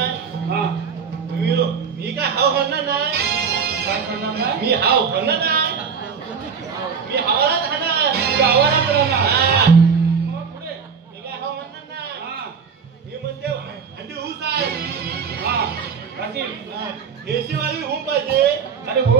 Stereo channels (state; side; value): quieter; left; 6.2 dB